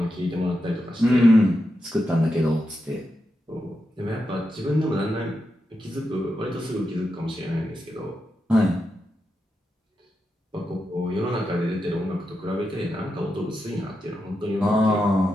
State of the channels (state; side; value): normal; both; correlation 0.87